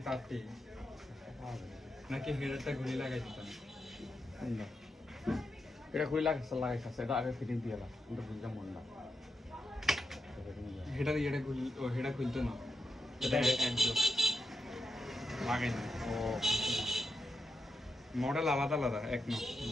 তারটি পাওয়া যাবে না। নাকি হেডারটা ঘুরে লাগাই দিতাম। কোনটা? এটা খুলে লাগাইছে এটা আগে ফিটিং দিয়ে লাগ কিন্তু বুঝলাম মন না হেডা ইয়েটা হেডা খুলতো না, এটা একদম লাগাই না। ও মডেল আলাদা আলাদা এক ন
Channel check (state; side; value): normal; both; correlation 0.86